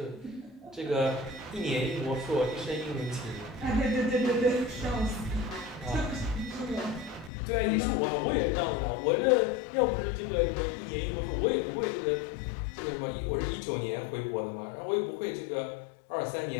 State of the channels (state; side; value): drops out; right; at 7.3 s